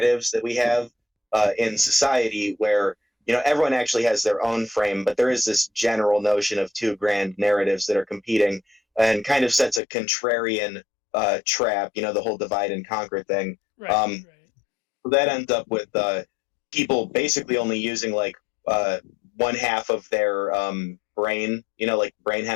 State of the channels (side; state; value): right; drops out; at 9.8 s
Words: that we have in society, where everyone actually has their own frame, but there is this general notion of two grand narratives that are competing, and kind of sets a contrarian trap. The whole divide and conquer thing. Right, Um, right. that ends up with people basically only using like uh, one half of their brain, like brain